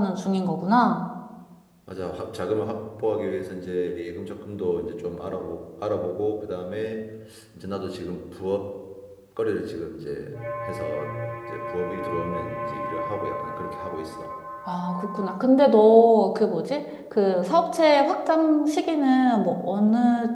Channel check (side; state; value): both; identical; correlation 1.00